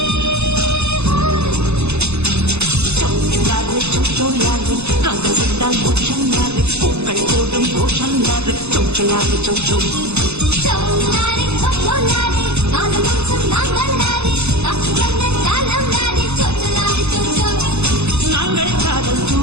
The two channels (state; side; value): late; left; 0.81 ms